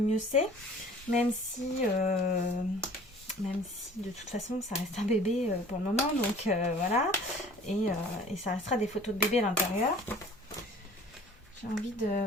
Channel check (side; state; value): both; normal; correlation 0.49